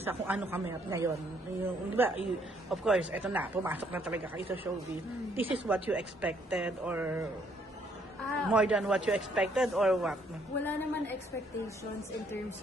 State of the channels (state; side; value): normal; both; correlation 0.68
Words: kung ano kami at ngayon? Di ba, of course, eto na, pumasok na talaga kayo sa showbiz. This is what you expected or more than what you expected or what? Wala naman expectations in terms